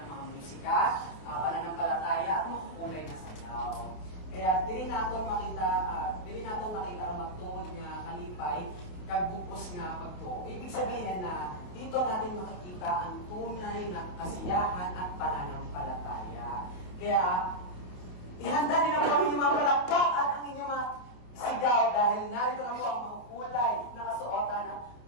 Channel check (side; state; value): right; late; 28 ms